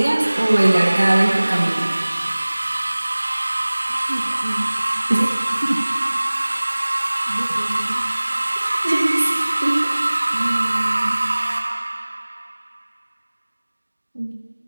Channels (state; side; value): inverted; both; correlation -1.00